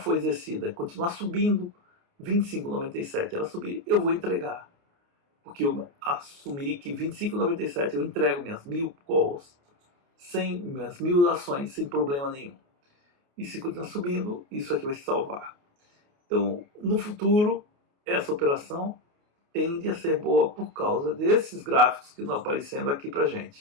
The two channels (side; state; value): left; late; 28 ms